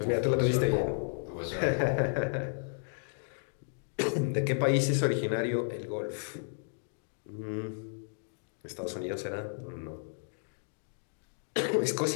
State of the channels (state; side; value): silent; right; digital silence